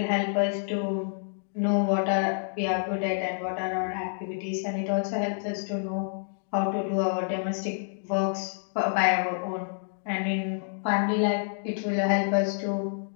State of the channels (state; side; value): silent; right; digital silence